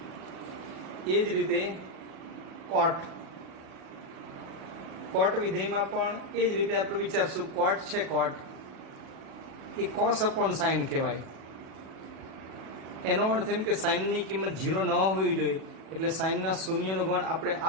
એ જ રીતે કોટ. કોટ વિધેયમાં પણ એ જ રીતે આપણે વિચારશું. કોટ છે, કોટ એ કોસ અપોન સાઇન કહેવાય. એનો અર્થ એમ કે સાઇનની કિંમત 0 ન હોવી જોઈએ, એટલે સાઇનના શૂન્યનો ગણ આપણે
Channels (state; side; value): late; left; 37 ms